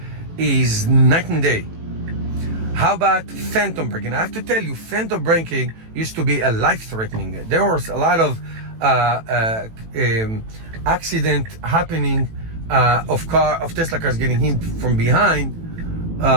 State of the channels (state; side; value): late; left; 18 ms